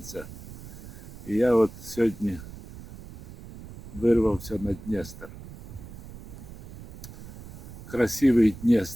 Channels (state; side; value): noise; right; rumble, 14 dB below the sound